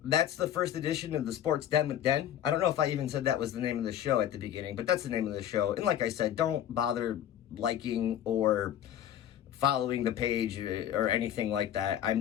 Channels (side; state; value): right; quieter; 10.7 dB